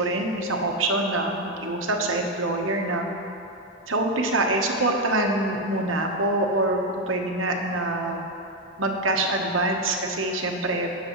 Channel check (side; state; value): both; normal; correlation 0.06